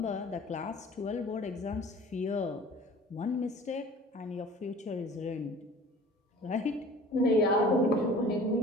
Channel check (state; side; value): normal; both; correlation 0.46